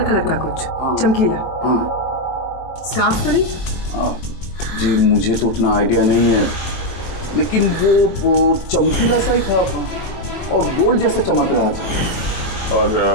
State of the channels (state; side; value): late; right; 23 ms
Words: कलर का कुछ चमकीला? हाँ। स्कार्फ तो नहीं? हाँ जी, मुझे तो उतना आइडिया नहीं है, लेकिन वो चमकीला सा ही था और गोल्ड जैसा चमक रहा था। और